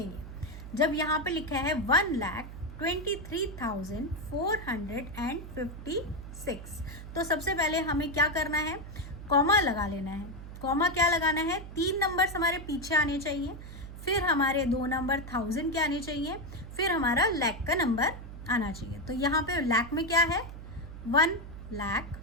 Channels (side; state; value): right; noise; hum, 12 dB below the sound